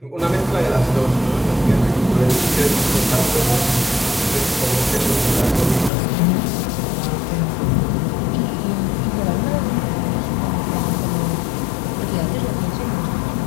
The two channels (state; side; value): drops out; right; at 5.9 s